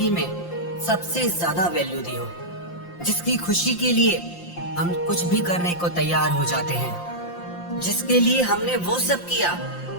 में सबसे ज्यादा वैल्यू दी हो, जिसकी खुशी के लिए हम कुछ भी करने को तैयार हो जाते हैं, जिसके लिए हमने वो सब किया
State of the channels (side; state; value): right; late; 5.7 ms